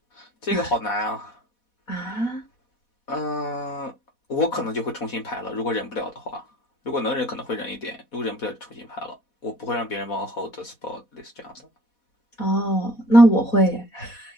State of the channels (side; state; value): right; late; 4.2 ms